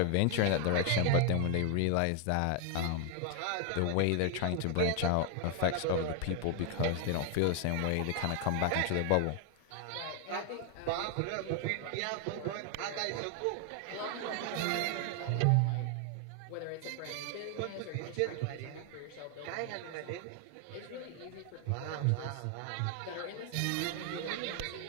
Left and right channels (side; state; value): both; different; correlation 0.00